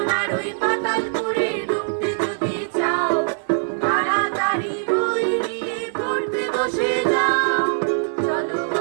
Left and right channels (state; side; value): silent; left; 64 dB below the other